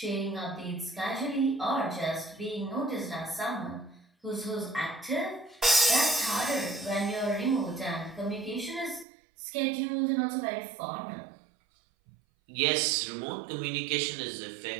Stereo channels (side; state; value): left; drops out; at 9.1 s